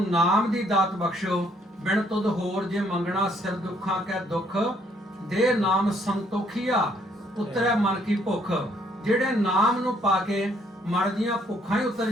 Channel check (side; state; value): both; normal; correlation 0.67